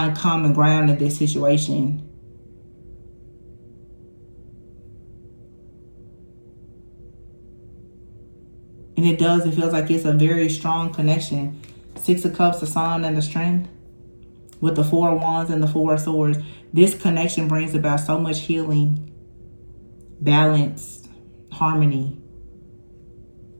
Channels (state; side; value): inverted; both; correlation -1.00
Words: common ground in this situation. And it does. It feels like it's a very strong connection. 6 of Cups, the Sun, and the Strength, with the 4 of Wands and the 4 of Swords. This connection brings about so much healing, balance, harmony.